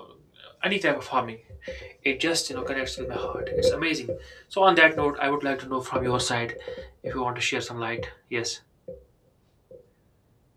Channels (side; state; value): both; identical; correlation 1.00